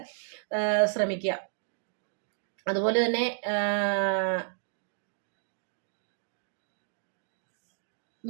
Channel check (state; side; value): silent; left; digital silence